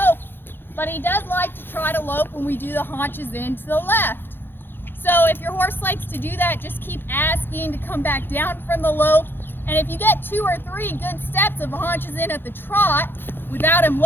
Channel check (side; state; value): right; late; 0.10 ms